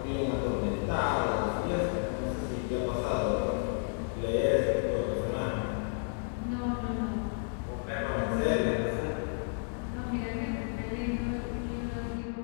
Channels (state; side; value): silent; right; digital silence